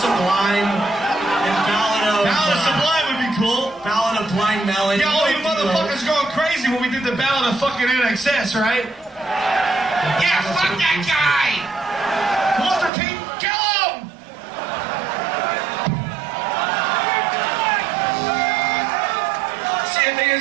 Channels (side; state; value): left; drops out; at 12.9 s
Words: Sublime. Ballad of Sublime would be cool. Ballad of Blind Melon. Yeah, all you motherfuckers going crazy when we did the Ballad of fucking NXS, right? Yeah, fuck that guy! Walter Payton, kill him! See, the thing